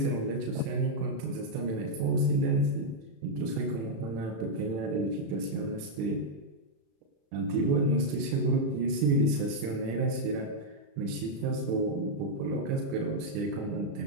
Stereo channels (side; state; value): left; late; 36 ms